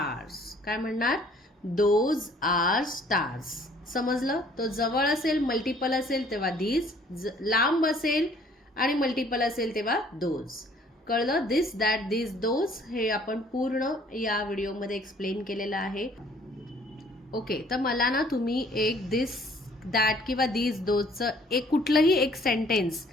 काय म्हणणार? Those are stars. समजलं? तो जवळ असेल, मल्टिपल असेल तेव्हा दीज, लांब असेल आणि मल्टिपल असेल तेव्हा दोज. कळलं? दिस, दॅट, दिस, दोज हे आपण पूर्ण या व्हिडिओमध्ये एक्सप्लेन केलेलं आहे. ओके, तर मला ना तुम्ही एक दिस, दॅट किंवा दिस, दोजचं एक कुठलंही एक सेंटेन्स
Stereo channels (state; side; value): normal; both; correlation 0.58